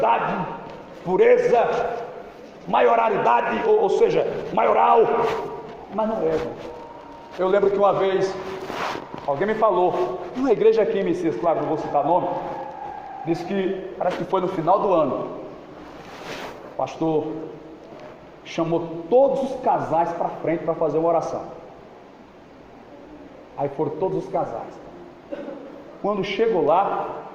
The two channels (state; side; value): identical; both; correlation 1.00